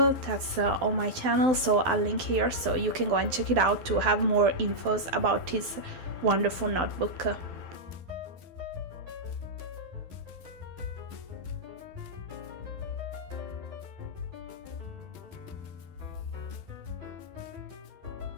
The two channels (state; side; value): late; left; 12 ms